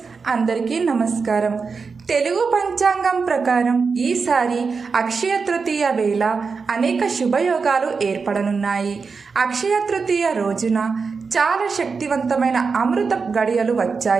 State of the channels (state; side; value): quieter; left; 5.0 dB